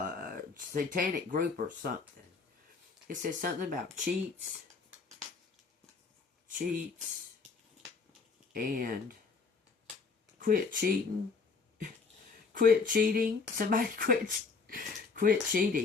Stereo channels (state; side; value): quieter; right; 4.7 dB